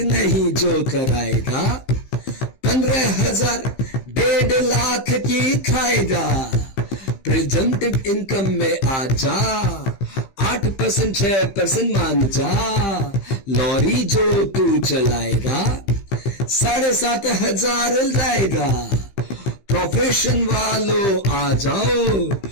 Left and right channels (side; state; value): right; late; 16 ms